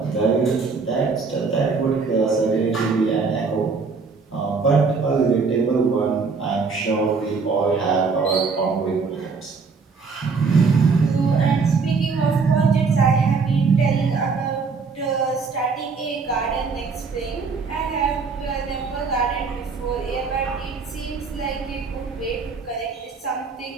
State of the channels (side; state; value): left; quieter; 4.8 dB